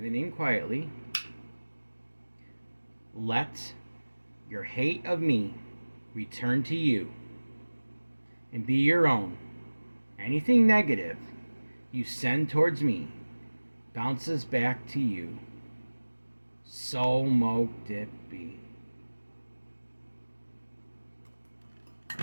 name quietly. Let your hate of me return to you and be your own. Anything negative you send towards me bounces back to you. So mote it be.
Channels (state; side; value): inverted; both; correlation -1.00